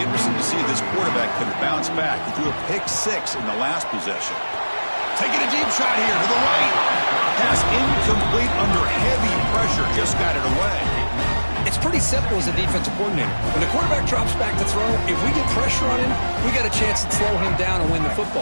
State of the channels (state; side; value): inverted; both; correlation -1.00